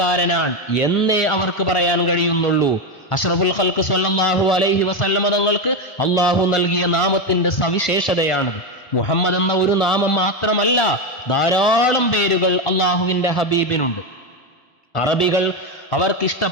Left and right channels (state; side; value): late; right; 1.5 ms